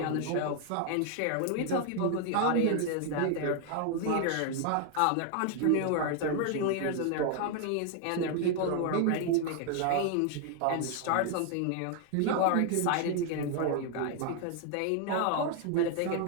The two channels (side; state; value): both; different; correlation 0.00